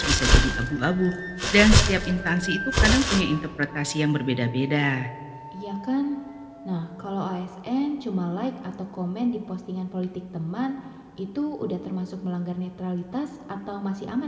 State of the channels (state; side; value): identical; both; correlation 1.00